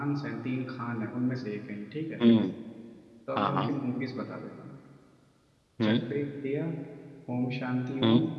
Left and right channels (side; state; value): both; identical; correlation 1.00